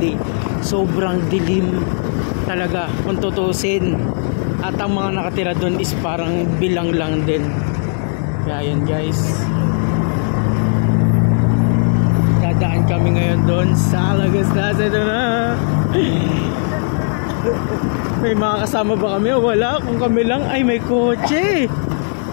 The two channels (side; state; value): right; silent; 57 dB below the other